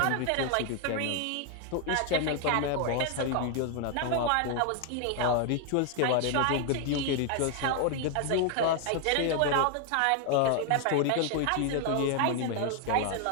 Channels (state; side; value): different; both; correlation 0.00